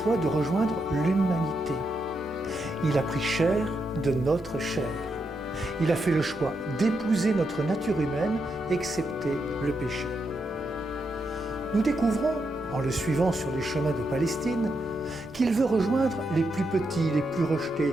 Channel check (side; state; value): both; normal; correlation 0.82